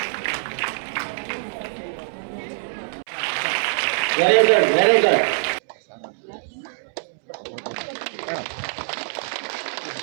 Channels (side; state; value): left; silent; 63 dB below the other